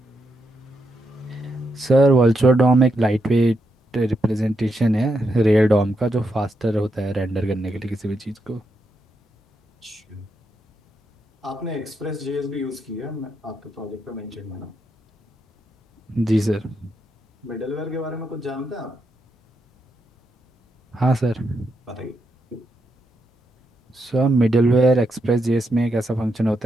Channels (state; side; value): normal; both; correlation 0.82